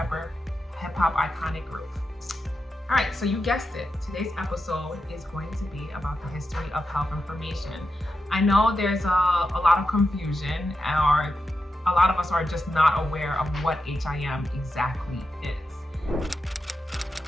hip hop iconic group. All right, so you guessed it. Today's episode is going to be about the history of health information. I know there's a lot of confusion, or a lot of us are just not aware of what HIM exactly is.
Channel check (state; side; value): normal; both; correlation 0.88